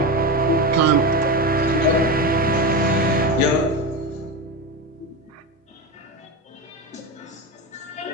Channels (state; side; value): normal; both; correlation 0.19